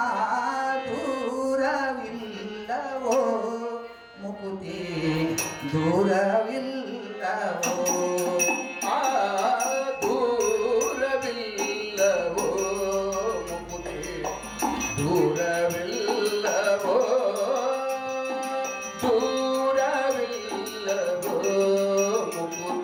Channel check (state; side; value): identical; both; correlation 1.00